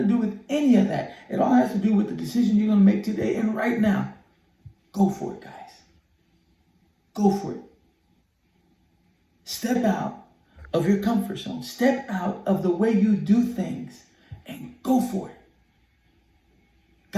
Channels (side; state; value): both; identical; correlation 1.00